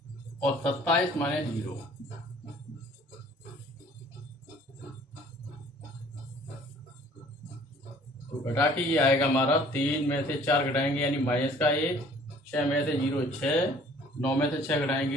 और 27 माइनस 0। तो घटा के ये आएगा हमारा 3 में से 4 घटाएंगे यानी माइनस का 1, 6 में से 0 6, 9 में से 6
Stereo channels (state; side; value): normal; both; correlation 0.54